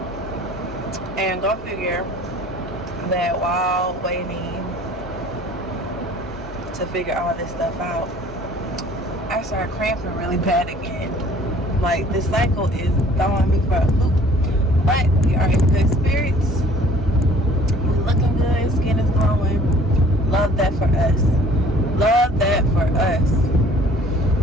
and go figure that while waiting to figure all this stuff out, I started cramping really bad again. Like, this cycle is throwing me for a loop. But we are in good spirits. We're looking good. Skin is glowing. Love that for us. Love that for us.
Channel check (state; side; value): normal; both; correlation 0.53